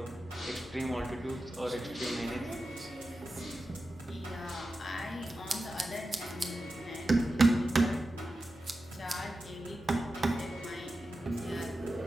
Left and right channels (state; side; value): normal; both; correlation 0.92